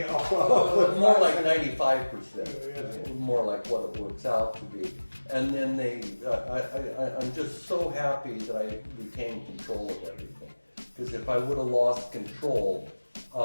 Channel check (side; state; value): both; inverted; correlation -1.00